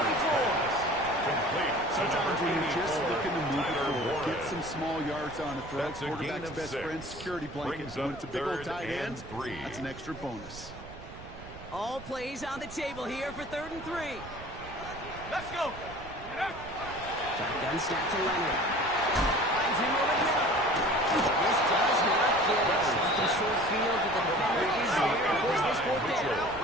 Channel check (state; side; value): noise; right; rumble, 15 dB below the sound